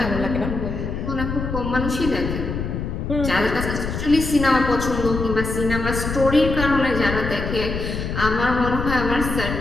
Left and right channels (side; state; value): left; noise; rumble, 4 dB below the sound